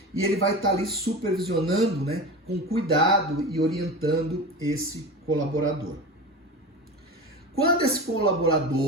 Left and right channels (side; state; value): both; normal; correlation 0.28